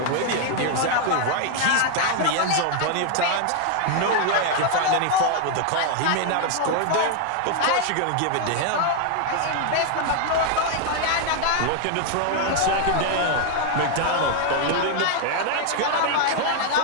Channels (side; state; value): both; different; correlation 0.00